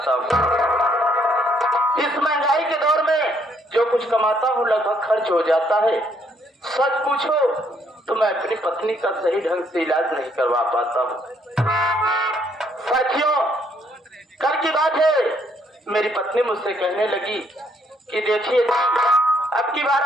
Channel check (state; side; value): normal; both; correlation 0.69